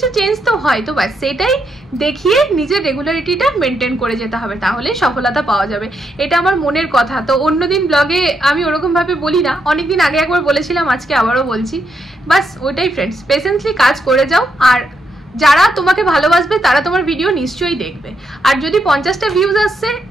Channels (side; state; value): both; normal; correlation 0.80